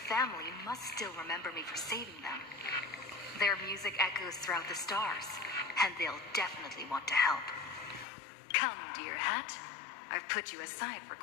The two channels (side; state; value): right; drops out; at 8.1 s